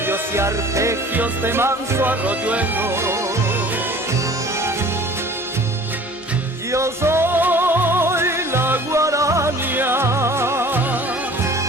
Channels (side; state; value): both; normal; correlation 0.47